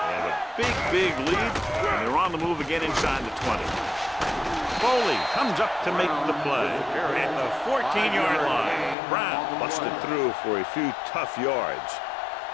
They have a big lead, and they're on the move again inside the 20. Foley comes up to make the play at the 14-yard line. Brown busted through for a few tough yards.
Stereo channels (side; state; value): right; drops out; at 9.0 s